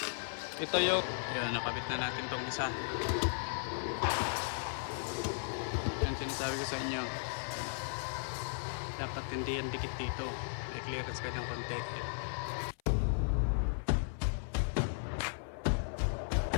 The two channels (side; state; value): right; silent; 54 dB below the other